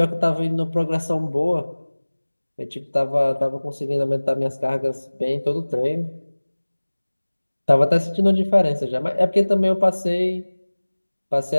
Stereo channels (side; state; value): both; inverted; correlation -1.00